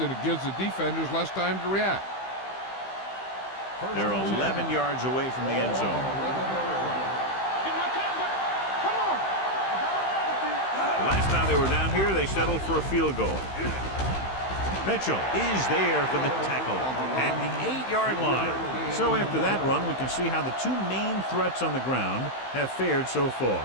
it gives the defenders less time to react. They're 11 yards away from the end zone. The last time they were down here, they settled for a field goal. Mitchell is there for the tackle at the 8-yard line. So after that run, we can see how the 2 main threats on the ground have fared so far.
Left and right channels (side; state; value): right; late; 15 ms